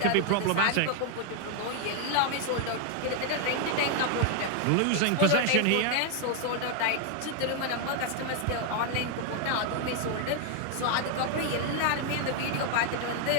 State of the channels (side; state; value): both; different; correlation 0.00